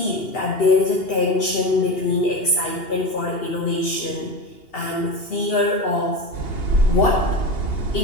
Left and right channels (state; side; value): late; right; 2.8 ms